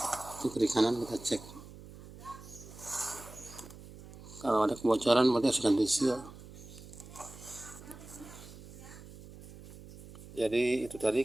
Itu kiri kanan kita cek. Kalau ada kebocoran berarti harus ganti seal. Jadi itu tadi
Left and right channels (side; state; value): right; noise; hum, 17 dB below the sound